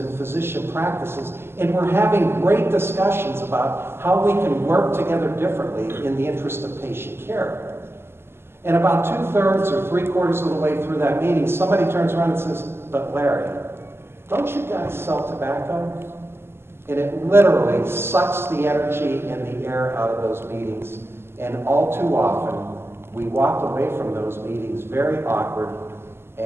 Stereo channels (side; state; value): left; late; 0.12 ms